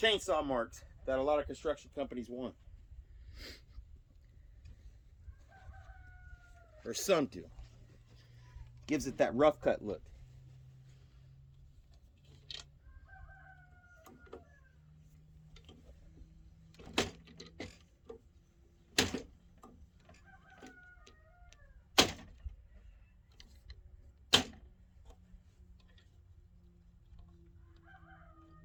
marks that a lot of construction companies want. Or some do. Gives it that rough cut look.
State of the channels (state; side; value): identical; both; correlation 1.00